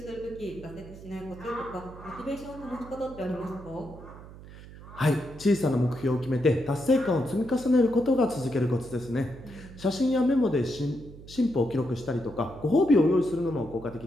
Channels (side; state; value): right; noise; hum, 17 dB below the sound